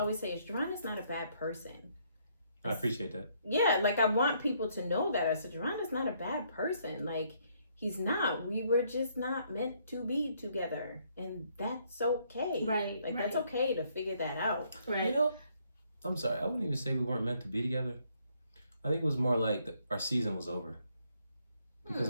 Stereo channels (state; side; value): inverted; both; correlation -0.70